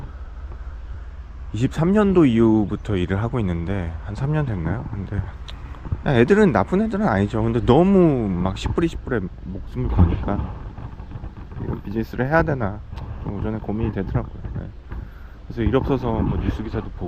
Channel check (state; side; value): identical; both; correlation 1.00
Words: 23년도 이후부터 일을 하고 있는데 한 3년 됐나요? 근데 애들은 나쁜 애들은 아니죠. 근데 너무 막 10불이 10불에 목숨을 거니까 이런 비즈니스를 해야 되나 좀 오전에 고민이 되더라고요. 네. 그래서 일 없어서 뭐 뉴스 기사도